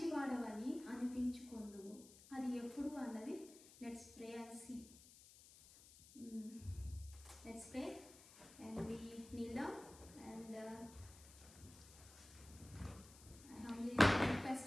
అనిపించుకొందువు. అది ఎప్పుడు అన్నది let's pray and see. Let's pray and we kneel down and I humbly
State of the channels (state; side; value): noise; left; hiss, 19 dB below the sound